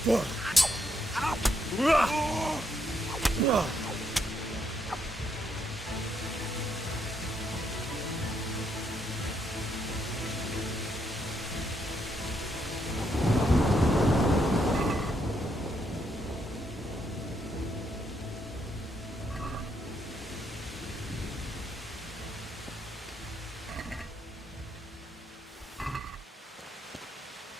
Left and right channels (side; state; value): both; normal; correlation 0.76